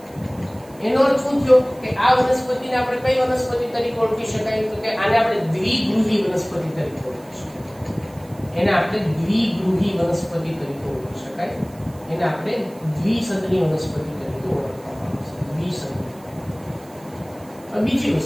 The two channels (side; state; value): right; noise; hiss, 25 dB below the sound